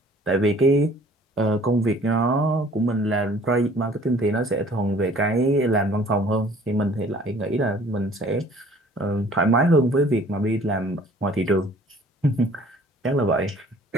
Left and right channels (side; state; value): both; normal; correlation 0.53